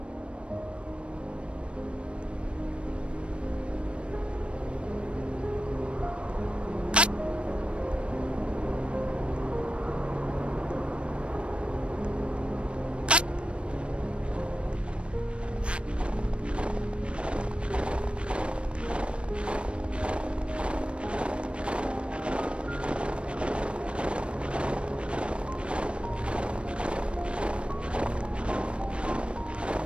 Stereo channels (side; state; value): left; late; 0.059 ms